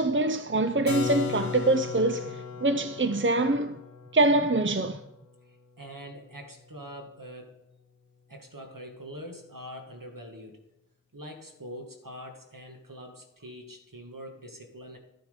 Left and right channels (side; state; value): both; normal; correlation 0.07